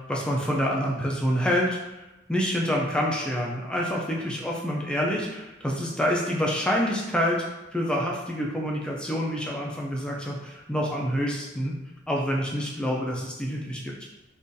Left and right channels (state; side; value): normal; both; correlation 0.64